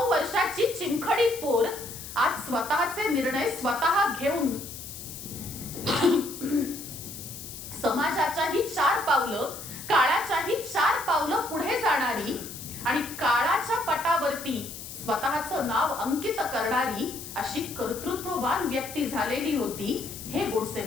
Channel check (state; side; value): noise; left; hiss, 11 dB below the sound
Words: वर्षाची चिंखडी पोर आज स्वतःचे निर्णय स्वतः घेऊन समाजाच्याही 4 पावलं, काळाच्याही 4 पावलं पुढे जाणारी आणि काळाच्या पटावरती स्वतःचं नाव अंकित करणारी अशी कर्तृत्ववान व्यक्ती झालेली होती हे गोडसे